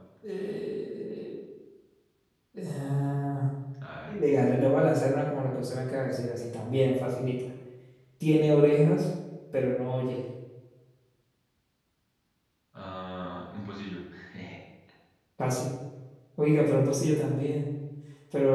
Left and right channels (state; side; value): identical; both; correlation 1.00